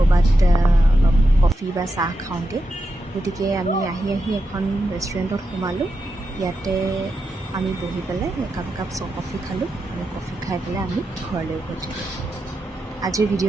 অলপ কফি বা চাহ খাওঁগৈ গতিকে আমি আহি এখন ৰেষ্টুৰেণ্টত সোমালোঁ ইয়াতে আমি বহি পেলাই একাপ কফি খালোঁ আৰু কফি খাই পেলাই আমি ঘৰলৈ উভতিলোঁ আজিৰ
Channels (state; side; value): normal; both; correlation 0.87